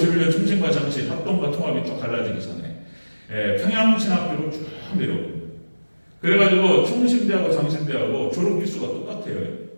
총신과 장신 합동과 통합이 쭉 갈라지기 전에 평양신학교로 쭉 내려옵니다. 그래가지고 총신대하고 장신대하고 졸업기수가 똑같아요.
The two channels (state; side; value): inverted; both; correlation -1.00